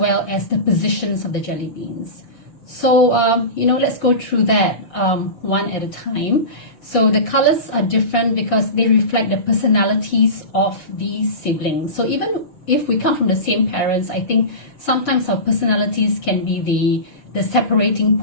as the positions of the jelly beans. So, let's go through that one at a time. So the colors are different because they reflect the personalities of these siblings. So even if we come from the same parents, I think sometimes our personalities can be the separating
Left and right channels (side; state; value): right; late; 6.5 ms